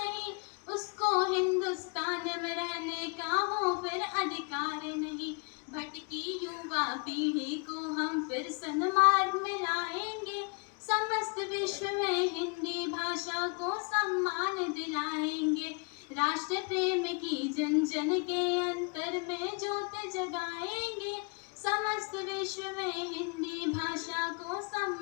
उसको हिंदुस्तान में रहने का हो फिर अधिकार नहीं। भटकी युवा पीढ़ी को हम फिर सन्मार्ग में लाएंगे, समस्त विश्व में हिंदी भाषा को सम्मान दिलाएंगे। राष्ट्र प्रेम की जन जन के अंतर में ज्योत जगाएंगे, समस्त विश्व में हिंदी भाषा को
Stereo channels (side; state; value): right; quieter; 34.5 dB